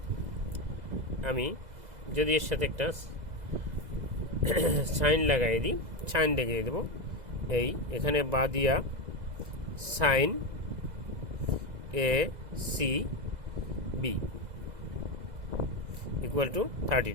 আমি যদি এর সাথে একটা সাইন লাগাই দিই, সাইন দেখিয়ে দেবো, এখানে বা দিয়া sine ACB equal to 30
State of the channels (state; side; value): late; left; 2.0 ms